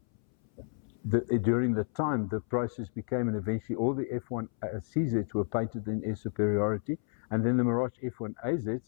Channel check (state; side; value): silent; right; 57 dB below the other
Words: the time, the process became, and eventually all the F1 CZs were painted in air superiority, and then the Mirage F1